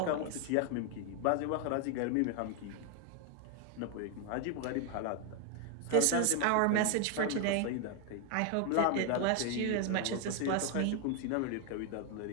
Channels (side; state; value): both; different; correlation 0.01